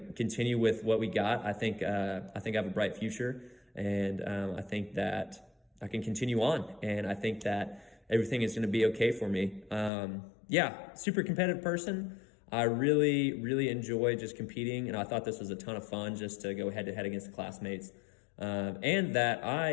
continue with what we got. I think I have a bright future, and I think that I can continue on, and I think that everything is going to be okay for me. Yeah, super competitive person. I really enjoy just competing, and I thought this was a ton of fun just to go head to head against the classmates. And that I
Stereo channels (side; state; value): right; drops out; at 9.9 s